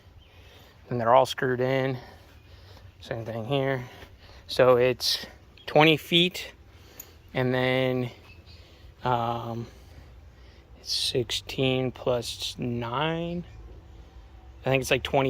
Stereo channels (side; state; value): both; identical; correlation 1.00